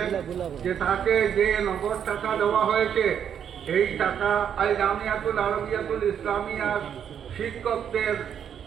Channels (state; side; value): quieter; left; 8.5 dB